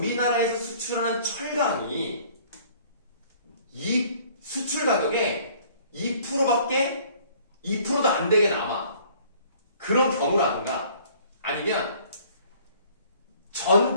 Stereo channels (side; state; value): both; inverted; correlation -0.55